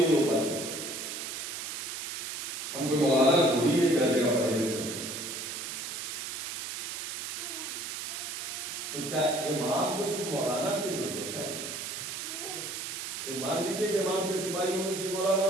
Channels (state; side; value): noise; right; hiss, 5 dB below the sound